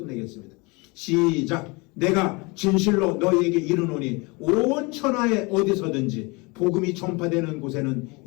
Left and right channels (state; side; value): quieter; right; 27.2 dB